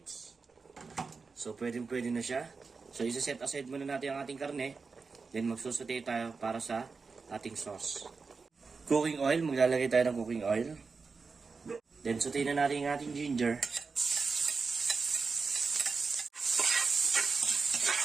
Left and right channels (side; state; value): left; quieter; 4.6 dB